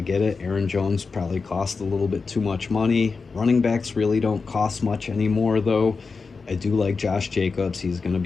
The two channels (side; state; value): right; quieter; 4.6 dB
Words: get it. Aaron Jones probably cost a little bit too much money. Running backs really don't cost much anymore, though. I do like Josh Jacobs. He's going to